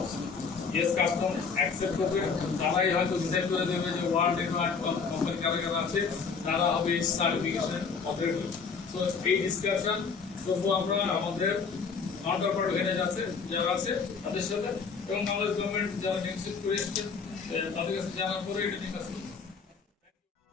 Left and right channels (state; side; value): quieter; right; 5.4 dB